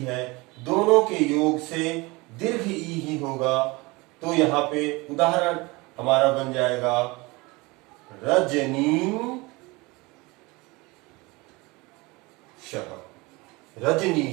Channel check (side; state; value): left; quieter; 24.1 dB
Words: है, दोनों के योग से दीर्घ ई ही होगा। तो यहां पे उदाहरण हमारा बन जाएगा रजनीशः।